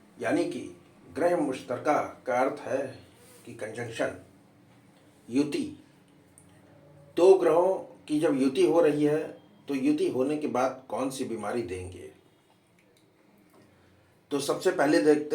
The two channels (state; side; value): identical; both; correlation 1.00